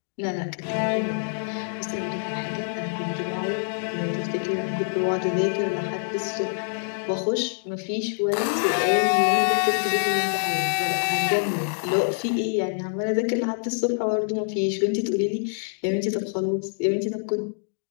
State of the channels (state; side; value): silent; right; digital silence